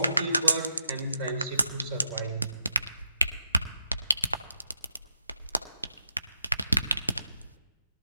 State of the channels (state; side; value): inverted; both; correlation -0.85